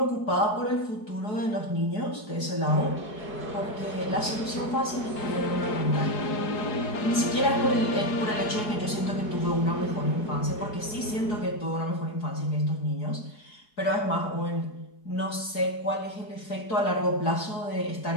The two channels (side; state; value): right; late; 4.7 ms